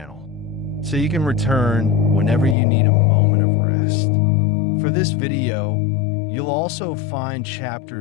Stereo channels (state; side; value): drops out; right; at 2.6 s